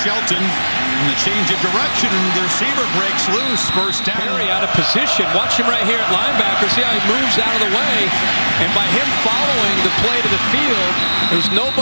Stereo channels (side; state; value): both; inverted; correlation -1.00